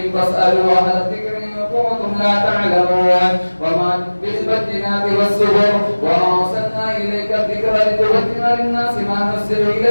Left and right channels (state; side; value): inverted; both; correlation -1.00